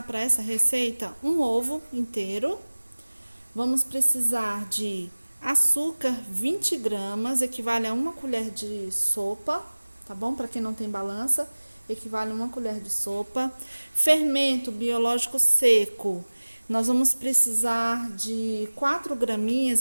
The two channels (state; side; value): inverted; both; correlation -1.00